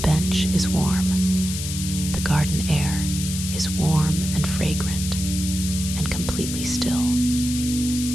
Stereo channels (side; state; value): left; noise; hiss, 6 dB below the sound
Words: is warm. The garden air is warm and fragrant and completely still.